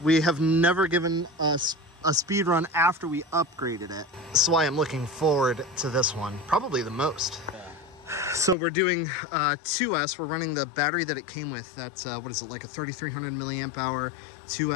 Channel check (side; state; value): right; drops out; at 8.6 s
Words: we have never given us a speed run after we upgraded it. That's why I'm looking forward to this one, probably the most. Yeah. So we're doing 2S. We're running the battery that it came with. That's, what is it, like a 3,300 milliamp hour